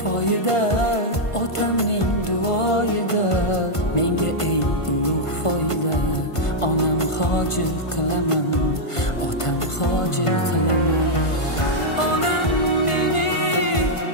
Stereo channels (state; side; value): late; right; 1.5 ms